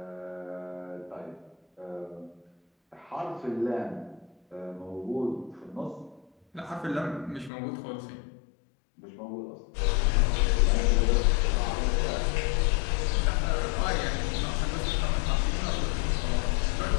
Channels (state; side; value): drops out; right; at 7.5 s